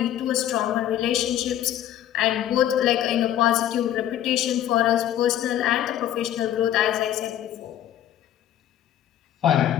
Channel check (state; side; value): quieter; right; 11.6 dB